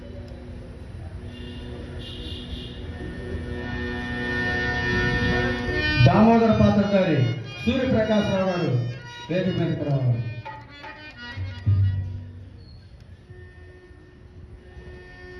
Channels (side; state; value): both; identical; correlation 1.00